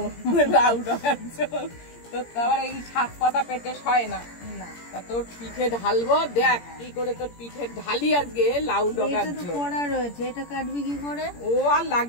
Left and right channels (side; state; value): right; late; 17 ms